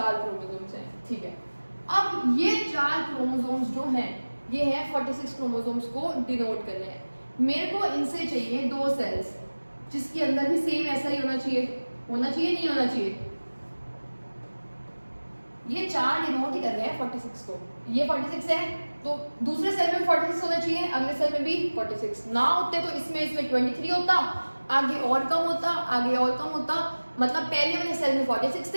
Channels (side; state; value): both; inverted; correlation -1.00